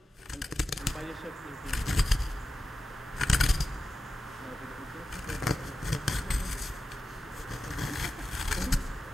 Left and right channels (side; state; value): both; normal; correlation 0.93